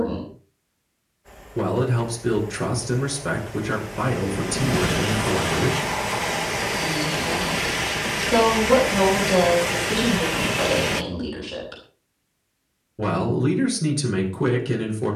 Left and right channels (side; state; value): both; identical; correlation 1.00